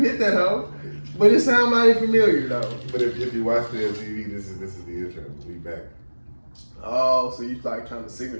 that hoe. But it sounded mighty familiar though. But if you watch the TV, this is the intro. We back. Oh, so you like trying to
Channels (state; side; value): inverted; both; correlation -1.00